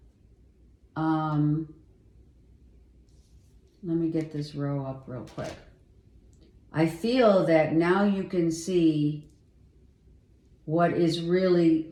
let me get this row up real quick. I feel that now you can see what is really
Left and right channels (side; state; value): both; identical; correlation 1.00